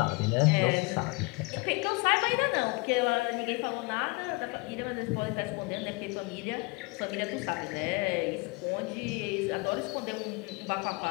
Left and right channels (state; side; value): quieter; right; 27.2 dB